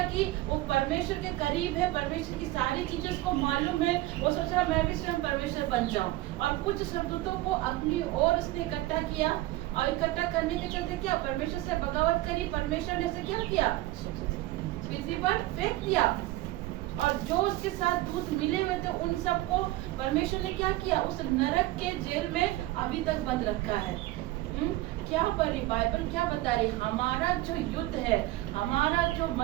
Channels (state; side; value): quieter; left; 17.4 dB